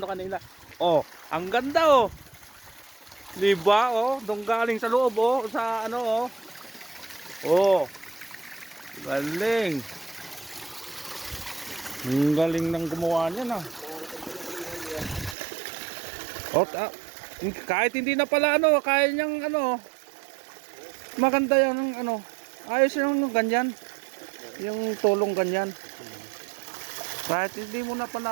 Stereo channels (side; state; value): left; drops out; at 15.4 s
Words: kanina. Oh, ang ganda oh. 'Di ba oh, dong galing sa loob oh, sa ano oh. Oh. Galing. Ang galing ng gumawa niyan ah. Oh, kahit hindi na pala ano, kaya niyang ano. Maganda 'yan ng ano. Ayos yung ganyan. Yung tulong ganyan. Kahit hindi mo na